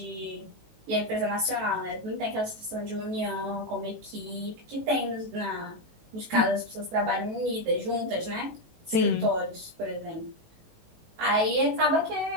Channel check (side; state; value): left; late; 18 ms